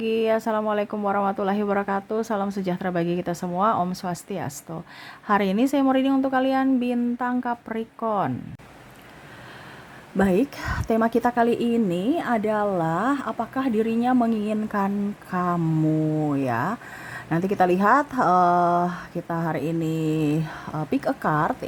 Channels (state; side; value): identical; both; correlation 1.00